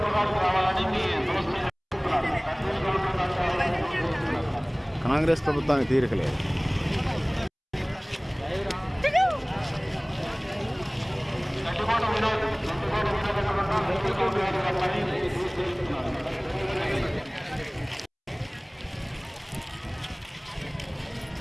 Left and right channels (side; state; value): both; identical; correlation 1.00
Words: కాంగ్రెస్ ప్రభుత్వానికి తీరికలేదు.